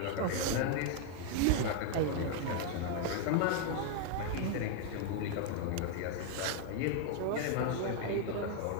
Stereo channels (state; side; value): different; both; correlation 0.00